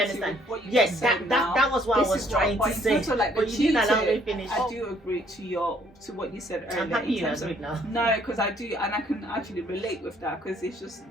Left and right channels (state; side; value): normal; both; correlation 0.64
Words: understand? Yes, that was what I was trying to say. But you didn't allow me to finish. I do agree to what you said earlier. I'm happy you agreed now. No, because I do, and I can actually relate with that, because it's just,